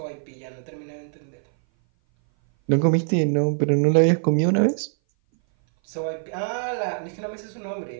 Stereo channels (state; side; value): silent; left; 58 dB below the other